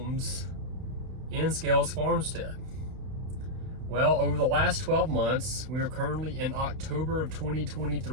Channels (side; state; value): left; late; 31 ms